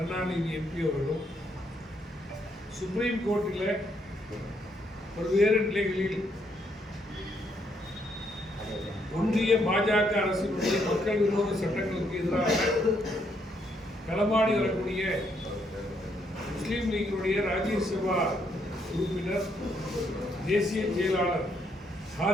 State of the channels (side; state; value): both; normal; correlation 0.74